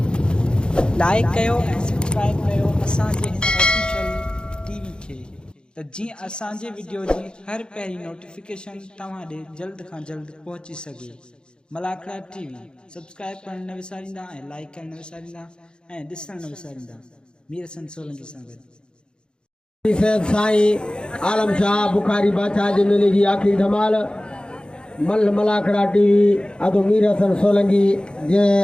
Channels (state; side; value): late; right; 0.050 ms